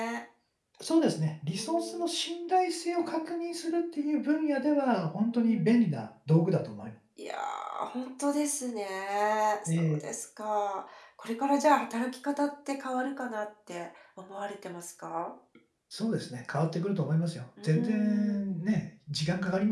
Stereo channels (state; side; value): identical; both; correlation 1.00